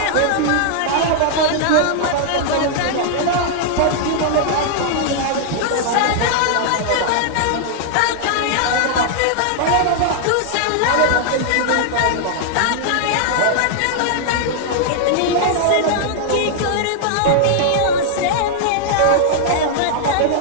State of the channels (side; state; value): both; different; correlation -0.01